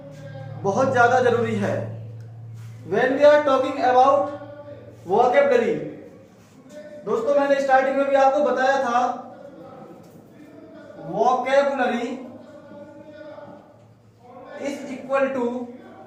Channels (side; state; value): both; identical; correlation 1.00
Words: बहुत ज्यादा जरूरी है। When we are talking about vocabulary, दोस्तों मैंने स्टार्टिंग में भी आपको बताया था vocabulary is equal